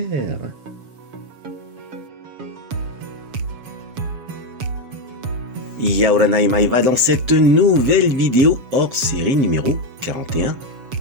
Yaoranai Maeva dans cette nouvelle vidéo hors série numéro 41.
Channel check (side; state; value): left; late; 7.2 ms